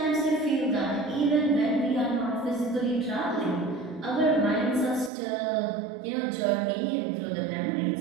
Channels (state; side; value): drops out; left; at 5.1 s